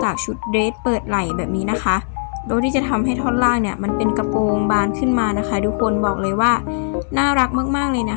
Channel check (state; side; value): silent; right; digital silence